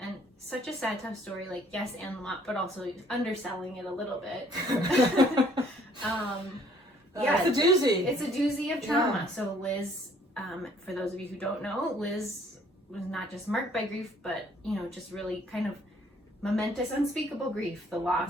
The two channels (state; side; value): normal; both; correlation 0.61